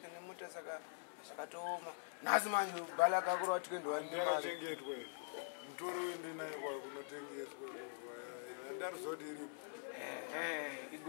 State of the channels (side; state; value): right; silent; digital silence